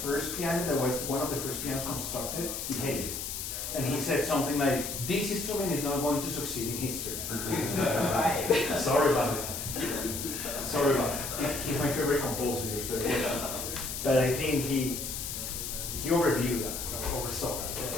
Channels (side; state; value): left; noise; hiss, 5 dB below the sound